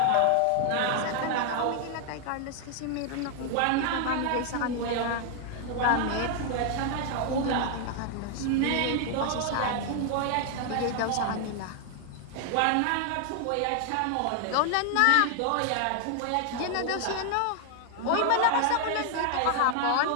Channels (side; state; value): both; different; correlation 0.00